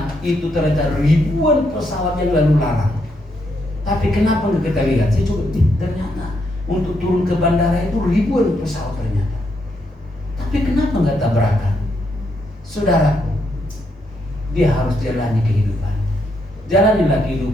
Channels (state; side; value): normal; both; correlation 0.78